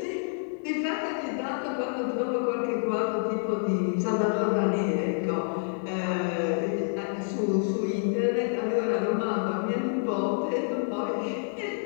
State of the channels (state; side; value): silent; right; digital silence